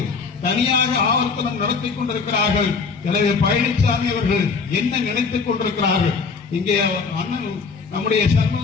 தனியாக ஆவர்த்தனம் நடத்திக் கொண்டிருக்கிறார்கள். எனவே பழனிசாமி அவர்கள் என்ன நினைத்துக் கொண்டிருக்கிறார்கள்? இங்கே நம்முடைய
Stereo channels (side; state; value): right; quieter; 5.0 dB